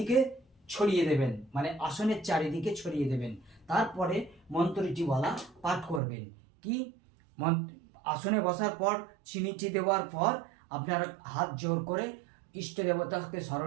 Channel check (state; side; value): drops out; left; at 6.0 s